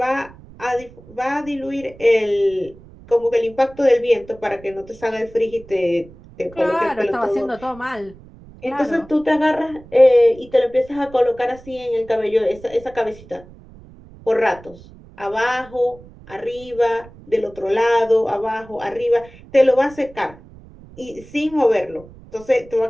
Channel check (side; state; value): right; noise; rumble, 21 dB below the sound